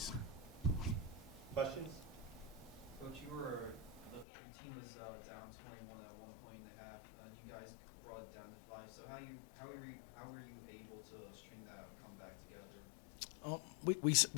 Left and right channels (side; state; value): right; drops out; at 4.2 s